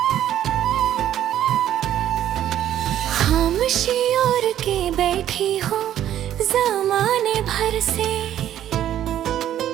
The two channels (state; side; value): quieter; left; 11.5 dB